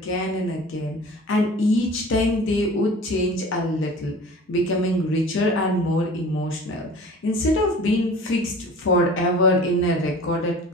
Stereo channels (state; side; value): normal; both; correlation 0.42